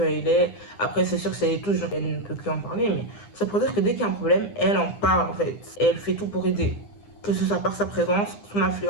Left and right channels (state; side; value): late; right; 9.8 ms